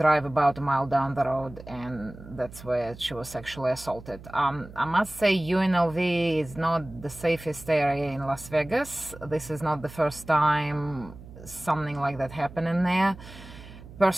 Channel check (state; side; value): noise; right; hum, 17 dB below the sound